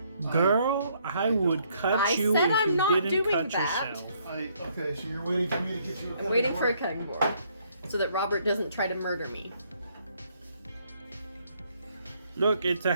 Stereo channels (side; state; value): both; inverted; correlation -0.68